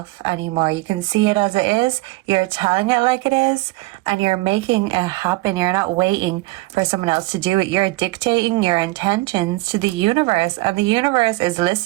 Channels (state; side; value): quieter; left; 21.6 dB